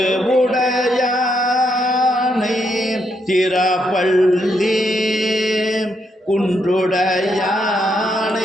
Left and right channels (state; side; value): normal; both; correlation 0.78